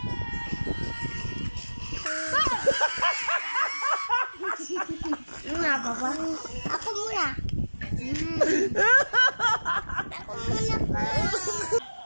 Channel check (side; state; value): both; inverted; correlation -1.00